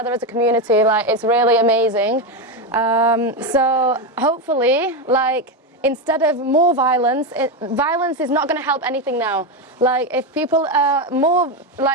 as a community. Like it's really amazing. So hopefully, like instead of more violence, violence is not going to help anything now. Like if people more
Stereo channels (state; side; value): normal; both; correlation 0.11